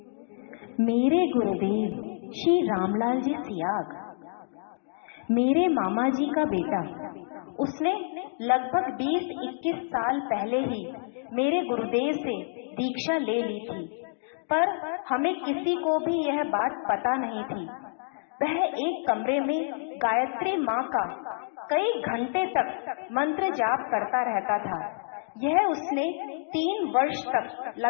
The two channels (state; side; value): silent; right; digital silence